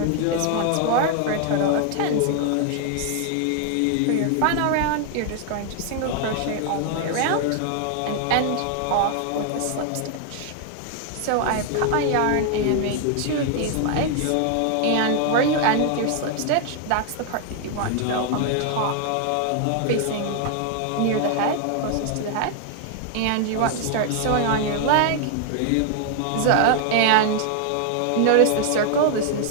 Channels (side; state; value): both; different; correlation 0.00